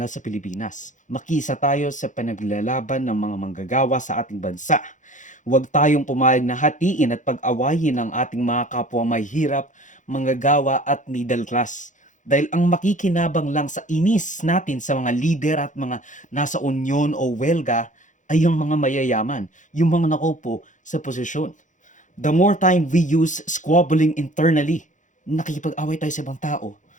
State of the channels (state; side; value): late; right; 0.36 ms